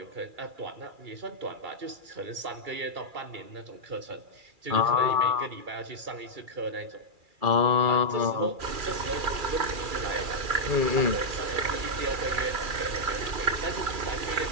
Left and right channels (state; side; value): late; left; 2.4 ms